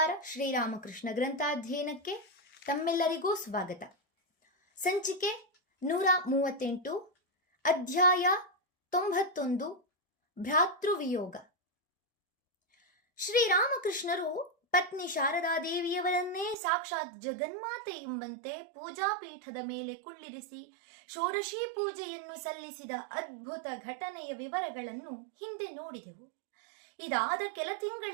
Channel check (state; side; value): drops out; left; at 16.6 s